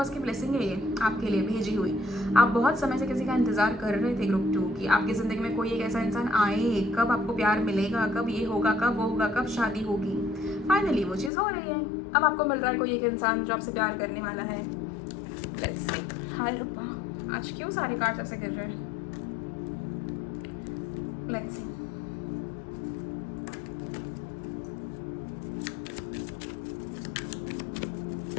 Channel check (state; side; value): drops out; right; at 11.3 s